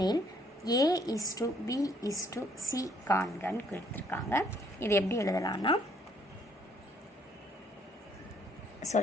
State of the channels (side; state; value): both; normal; correlation 0.65